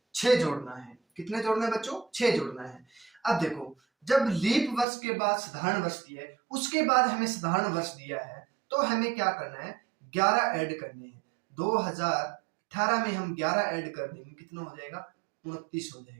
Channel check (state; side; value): drops out; left; at 4.9 s